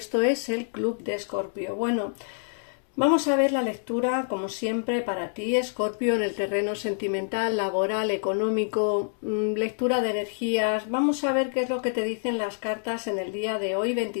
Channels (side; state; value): right; silent; 60 dB below the other